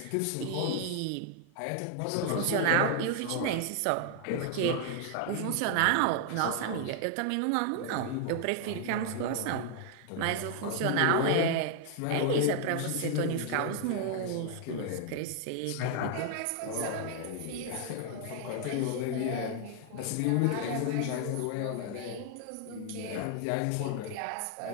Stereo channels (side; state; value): both; different; correlation 0.00